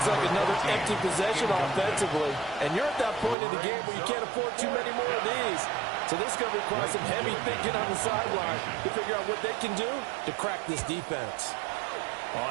like another empty possession offensively. And you're at that point in the game where you can't afford too many more of these. So this is going to require some heavy thinking on the sideline to figure out what they can do to crack this defense.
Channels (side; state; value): left; drops out; at 3.4 s